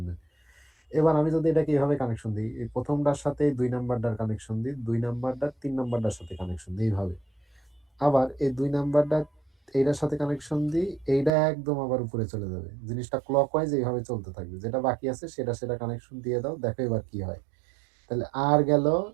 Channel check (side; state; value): left; drops out; at 11.3 s